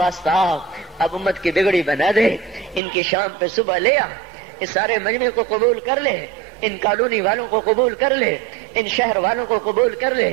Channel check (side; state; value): left; drops out; at 2.8 s